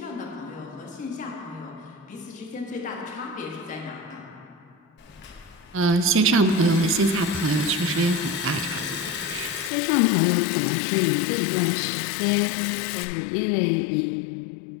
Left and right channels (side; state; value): right; drops out; at 9.7 s